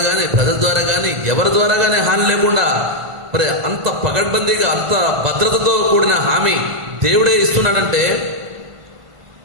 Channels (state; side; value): late; left; 1.5 ms